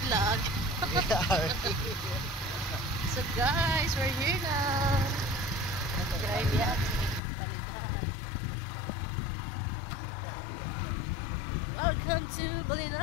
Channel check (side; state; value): right; drops out; at 7.2 s